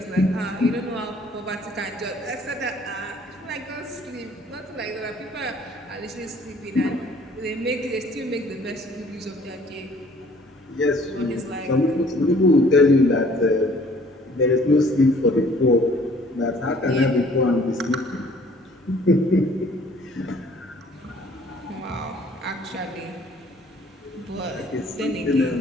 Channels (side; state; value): both; normal; correlation 0.57